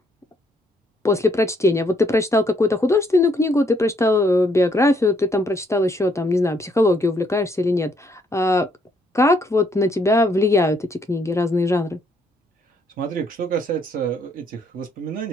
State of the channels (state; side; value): normal; both; correlation 0.70